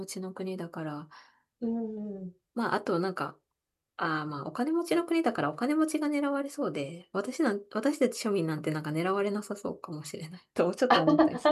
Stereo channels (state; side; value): identical; both; correlation 1.00